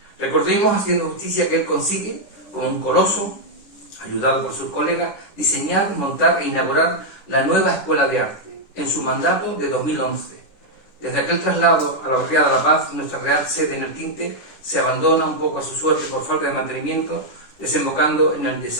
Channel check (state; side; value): late; right; 10 ms